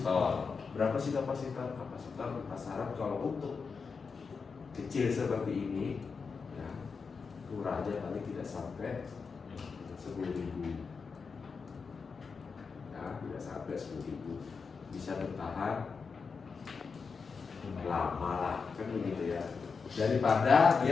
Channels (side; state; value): right; quieter; 5.2 dB